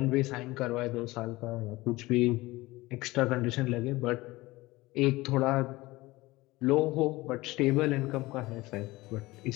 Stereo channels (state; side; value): quieter; right; 20.0 dB